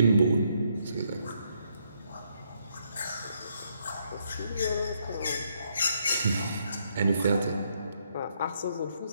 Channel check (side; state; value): both; inverted; correlation -0.74